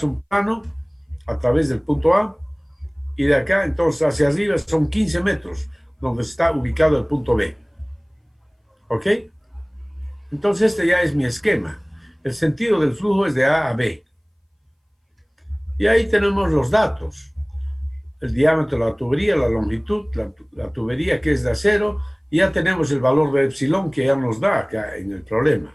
un plano a través del punto A, y de acá, entonces, hacia arriba son 15 metros, donde está ubicado el punto B. ¿Ok? Entonces, este ya es mi esquema. El sentido del flujo es de A a B. Y ahí tenemos los datos. El diámetro de la tubería, la longitud, la tubería que es de acero, y ya tenemos el valor de epsilon que ya nos da acá en el problema.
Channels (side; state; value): both; identical; correlation 1.00